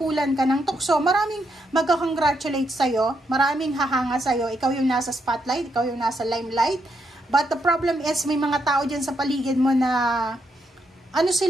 ka ng tukso, maraming magka-congratulate sa'yo, maraming hahanga sa'yo, ikaw yung nasa spotlight, ikaw yung nasa limelight, but the problem is, may mga tao dyan sa paligid mo na, ano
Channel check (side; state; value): both; normal; correlation 0.79